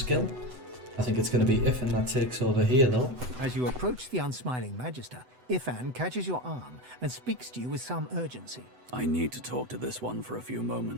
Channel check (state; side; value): late; left; 8.0 ms